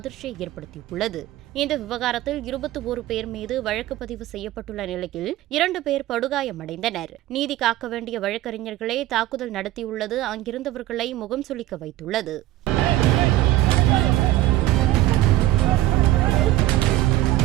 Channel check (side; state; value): left; quieter; 15.4 dB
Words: ஏற்படுத்தியுள்ளது. இந்த விவகாரத்தில் 21 பேர் மீது வழக்கு பதிவு செய்யப்பட்டுள்ள நிலையில் 2 பேர் படுகாயமடைந்தனர். நீதி காக்க வேண்டிய வழக்கறிஞர்களே தாக்குதல் நடத்தியுள்ளது அங்கிருந்தவர்களை முகம் சுளிக்க வைத்துள்ளது.